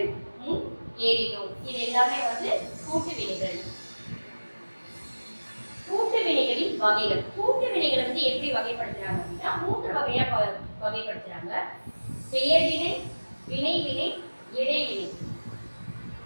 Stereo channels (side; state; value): both; inverted; correlation -1.00